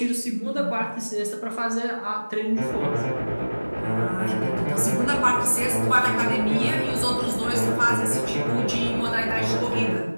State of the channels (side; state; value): both; inverted; correlation -1.00